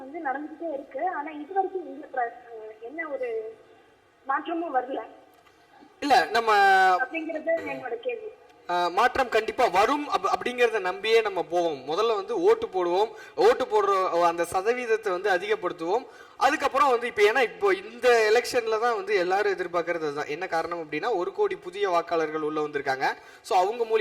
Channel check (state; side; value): identical; both; correlation 1.00